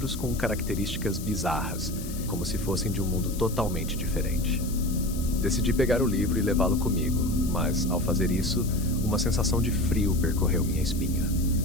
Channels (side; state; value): left; noise; hiss, 13 dB below the sound